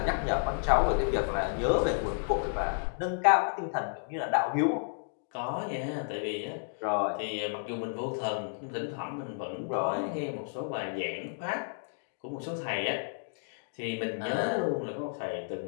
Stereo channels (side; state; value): right; silent; digital silence